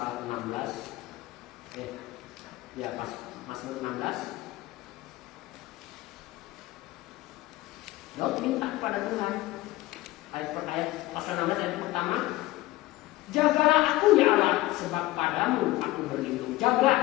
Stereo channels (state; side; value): quieter; right; 17.7 dB